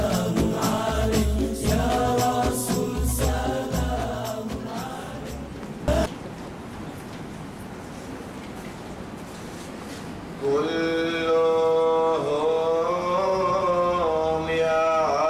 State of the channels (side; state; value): both; identical; correlation 1.00